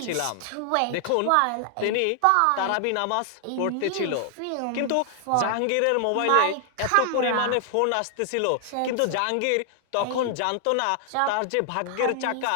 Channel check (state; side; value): different; both; correlation 0.00